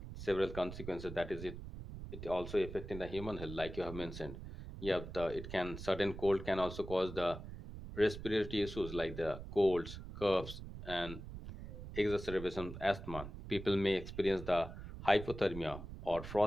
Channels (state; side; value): noise; right; rumble, 10 dB below the sound